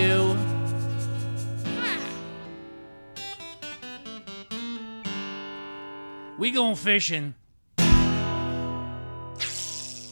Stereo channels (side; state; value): both; inverted; correlation -1.00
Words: We going fishing.